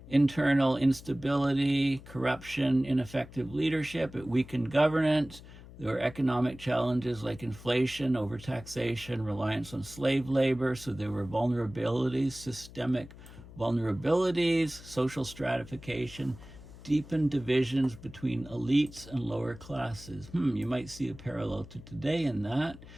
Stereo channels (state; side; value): noise; left; hum, 18 dB below the sound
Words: internal instability, corruption, ineffective leadership. It weakened governance. There were economic challenges like inflation, overtaxation, reliance on slave labor. So there were vulnerabilities, systemic vulnerabilities, social stratification, deepened divisions between elites and lower classes. You might see a parallel to today in that,